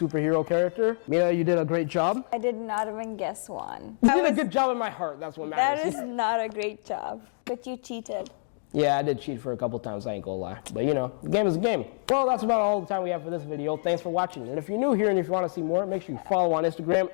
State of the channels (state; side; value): silent; right; digital silence